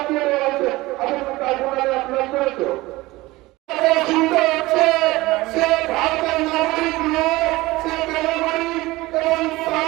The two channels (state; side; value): quieter; left; 19.9 dB